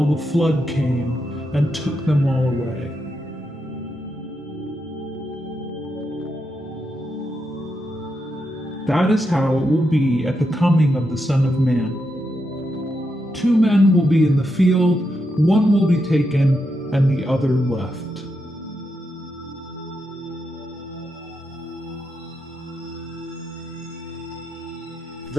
the flood came and took them all away. That is how it will be at the coming of the Son of Man. 2 men will be in the field, one will be taken, and the other left.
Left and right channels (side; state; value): both; normal; correlation 0.84